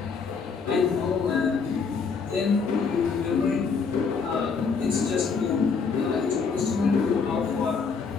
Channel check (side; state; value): right; quieter; 5.3 dB